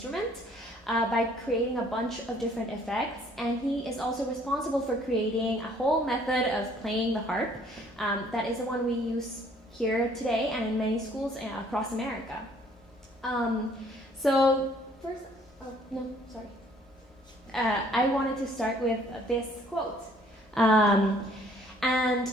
by creating a bunch of different effects. And he is also responsible for creating a whole method of playing the harp that is the one we use here today and in many schools across America. So first, no, sorry. I wanted to start with this quote. And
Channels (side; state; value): both; normal; correlation 0.60